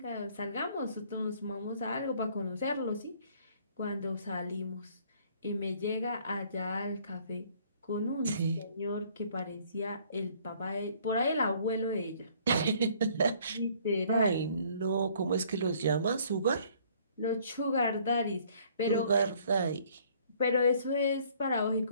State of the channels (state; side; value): inverted; both; correlation -0.59